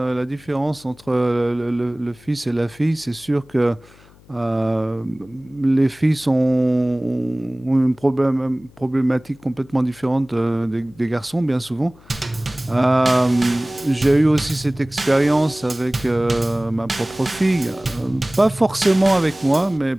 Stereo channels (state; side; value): noise; left; hum, 26 dB below the sound